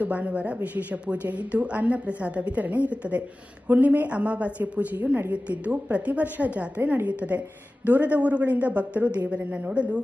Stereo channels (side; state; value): both; normal; correlation 0.96